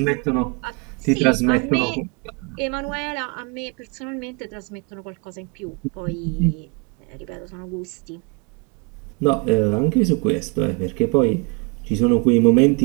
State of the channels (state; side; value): quieter; left; 31.3 dB